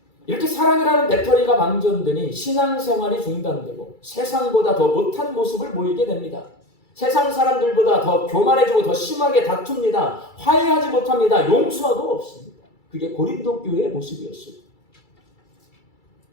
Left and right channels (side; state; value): right; late; 2.3 ms